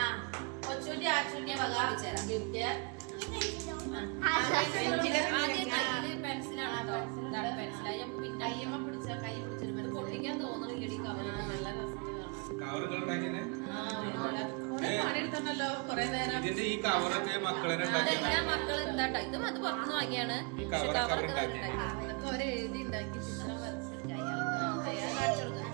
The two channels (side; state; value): left; quieter; 32.6 dB